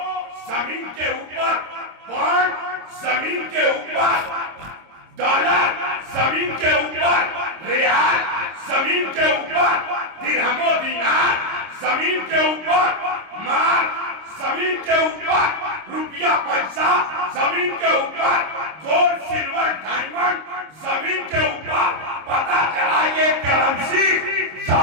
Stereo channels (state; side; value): late; left; 26 ms